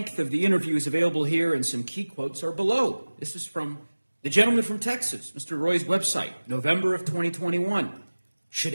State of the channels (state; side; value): inverted; both; correlation -1.00